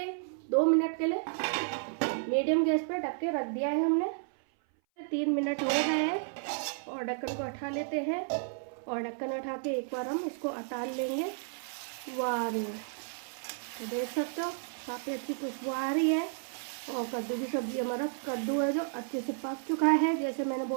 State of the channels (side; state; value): left; silent; 56 dB below the other